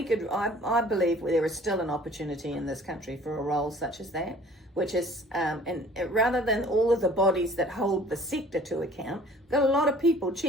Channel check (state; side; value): normal; both; correlation 0.51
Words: believe there is still an opportunity in this country for a role such as that, which is, and rather than all of the bodies that hold the sector to account, we've got a lot of people